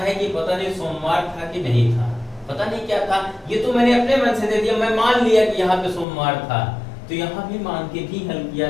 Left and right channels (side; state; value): right; drops out; at 6.1 s